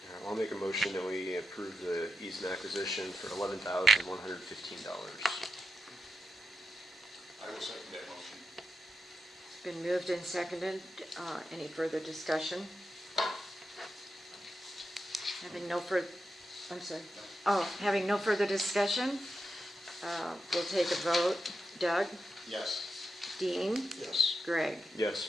I'll make a motion that we approve the easement acquisition for $11,115. I will second that motion. It's been moved and seconded. Any further discussion? Having no further, I'm sorry. Oh, having no further discussion, we'll take a vote. Doug? Yes. Dean? Yes. Greg? Yes.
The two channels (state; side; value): normal; both; correlation 0.88